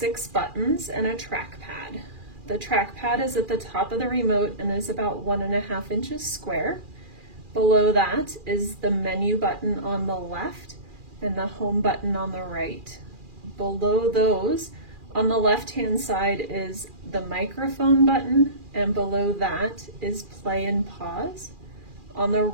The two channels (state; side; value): late; left; 2.4 ms